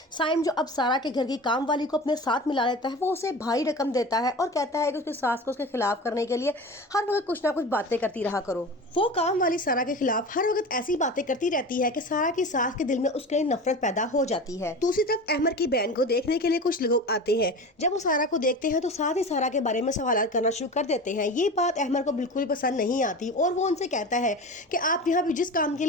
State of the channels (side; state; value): both; normal; correlation 0.32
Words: साइम जो अब सारा के घर की काम वाली को अपने साथ मिला लेता है, वो उसे भारी रकम देता है और कहता है कि उसकी सास को उसके खिलाफ करने के लिए हर वक्त कुछ ना कुछ बातें करती रहा करो। वो काम वाली सारा के खिलाफ हर वक्त ऐसी बातें करती रहती है कि सारा की सास के दिल में उसके लिए नफरत पैदा हो जाती है। दूसरी तरफ अहमद की बहन को देखने के लिए कुछ लोग आते हैं। जब वो सारा को देखते हैं तो साथ ही सारा के बारे में सवाल करना शुरू कर देते हैं। ये बात अहमद को बिल्कुल पसंद नहीं आती और वो उनसे कहता है कि आप यहाँ पे जिस काम के